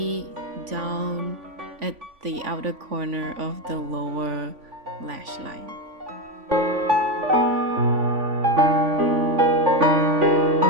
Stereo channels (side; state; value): left; late; 3.5 ms